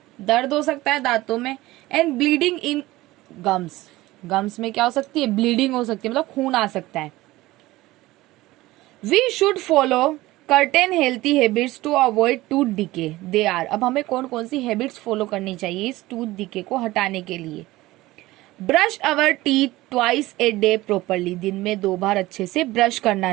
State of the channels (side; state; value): left; quieter; 18.2 dB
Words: दर्द हो सकता है दांतों में। And bleeding in gums, gums में क्या हो सकती है? ब्लीडिंग हो सकती है, मतलब खून आ सकता है। We should follow certain healthy habits to avoid tooth decay. They are, अब हमें कौन कौन सी हैबिट्स फॉलो करनी चाहिए इस टूथ डिके को हटाने के लिए? Brush our teeth twice a day properly. दिन में 2 बार अच्छे से ब्रश